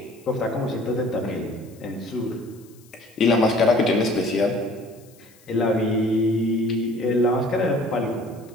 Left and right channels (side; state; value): left; noise; hiss, 28 dB below the sound